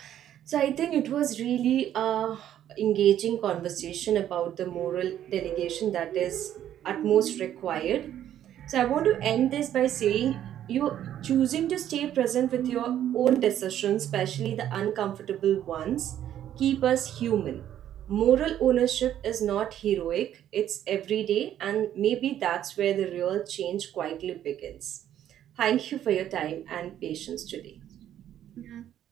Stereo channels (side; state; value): left; quieter; 11.1 dB